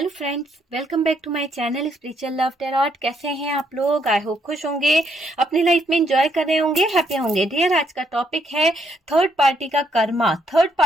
friends, welcome back to my channel spiritual love tarot. कैसे हैं आप लोग? आई होप खुश होंगे, अपनी लाइफ में एंजॉय कर रहे होंगे, हैप्पी होंगे। डियर, आज का टॉपिक है थर्ड पार्टी का कर्मा। थर्ड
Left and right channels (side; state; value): both; normal; correlation 0.73